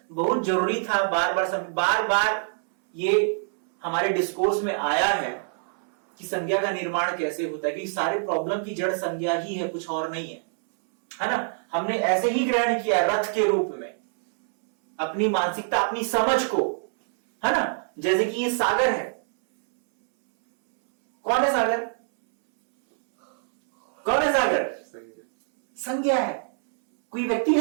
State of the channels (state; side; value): silent; left; 62 dB below the other